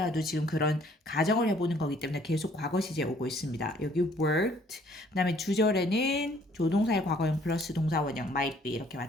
지금 그런 가정을 해보는 거기 때문에 계속 과거 시제 오고 있습니다. 여기 worked, 그 다음에 주절에는 조동사의 과거형 플러스 동사원형 might be 이렇게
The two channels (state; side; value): normal; both; correlation 0.60